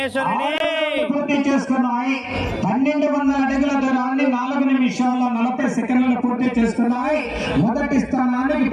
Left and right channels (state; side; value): identical; both; correlation 1.00